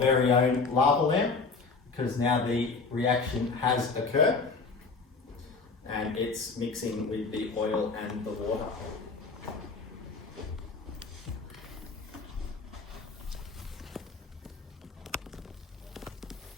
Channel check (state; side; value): quieter; right; 4.3 dB